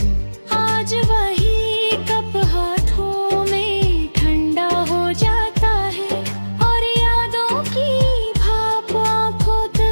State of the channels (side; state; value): both; inverted; correlation -1.00